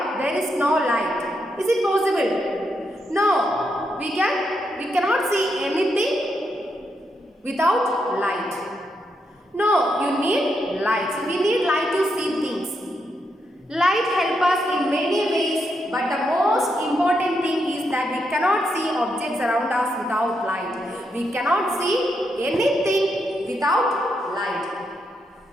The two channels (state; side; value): normal; both; correlation 0.81